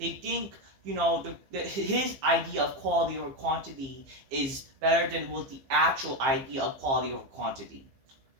think, his idea of quality over quantity is better than what the actual idea of quality over quantity.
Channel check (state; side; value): late; left; 15 ms